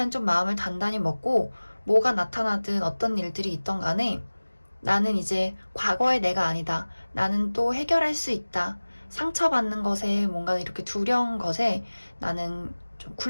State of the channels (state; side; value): inverted; both; correlation -1.00